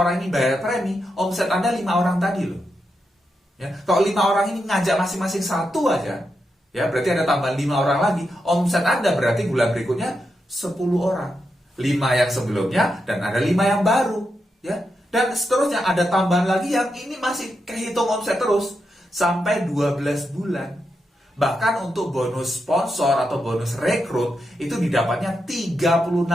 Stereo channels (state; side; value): normal; both; correlation 0.85